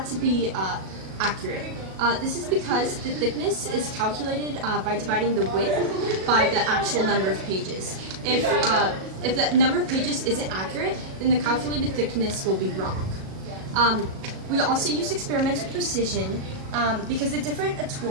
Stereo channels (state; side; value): late; left; 37 ms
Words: to be accurate. This is because the thickness is calculated by dividing the width by the actual number of pages. If the number of pages isn't accurate, then the calculated thickness will be wrong. We also use experimental precision because the different